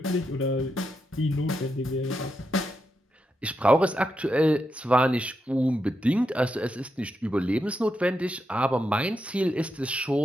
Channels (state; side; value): normal; both; correlation 0.84